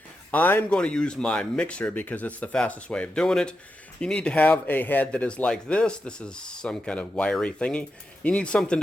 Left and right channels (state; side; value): normal; both; correlation 0.87